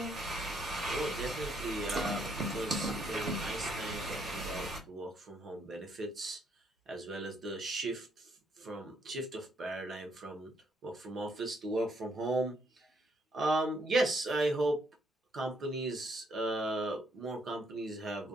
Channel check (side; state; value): both; normal; correlation 0.71